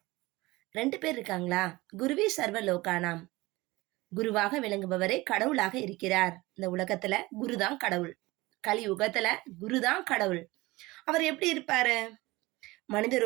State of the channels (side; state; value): left; quieter; 20.9 dB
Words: 2 பேர் இருக்காங்களா? குருவே சர்வ லோகானாம். குருவாக விளங்குபவரே கடவுளாக இருக்கிறார். இந்த உலகத்துல குருதான் கடவுள். கலியுகத்துல குருதான் கடவுள். அவர் எப்படி இருப்பாரு? மனித